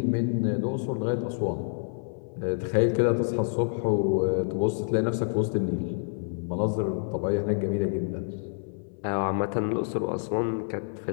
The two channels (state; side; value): silent; right; 59 dB below the other